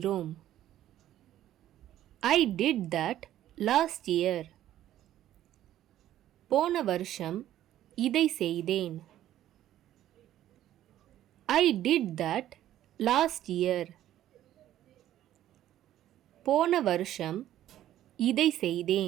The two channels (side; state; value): left; quieter; 12.6 dB